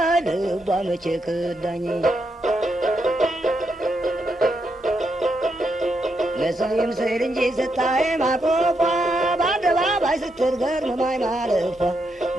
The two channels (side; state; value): both; normal; correlation 0.81